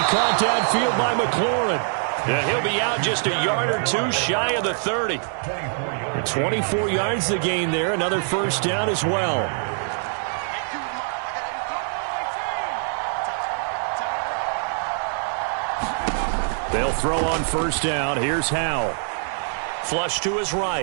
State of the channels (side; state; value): left; silent; 63 dB below the other